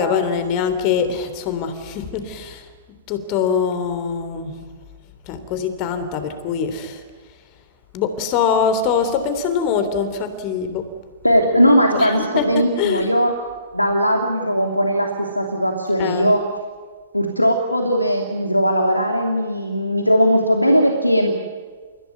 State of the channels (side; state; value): both; inverted; correlation -0.61